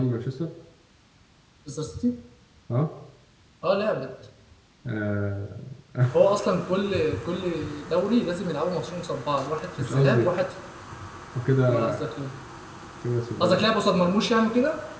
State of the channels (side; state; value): both; identical; correlation 1.00